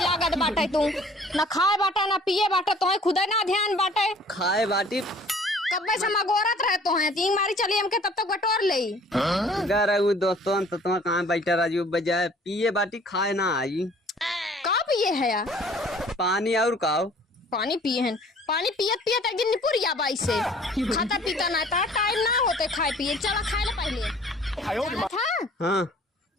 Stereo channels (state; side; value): normal; both; correlation 0.53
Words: बाटे तू न खाए बाटा न पिए बाटा तो खुद ना ध्यान बाटे खाए बाटी कब्बा से मगोरत रहे तो है तीन मारी चली हमके तब तक बटोर ले घर दोस्तों तो तुम कहाँ बैठा राजू बजाय पिए बाटी खाए ना आई का पिए है यार पानी और काओ पानी पिए हैं पानी पियत पियत एक दिन निपुरिया बाई से खाता पीता ना था टाइम ना होते खाए पिए चला खाए ले पहले था हाँ